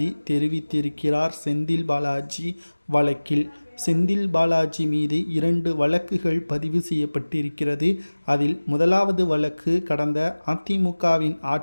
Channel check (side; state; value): both; inverted; correlation -1.00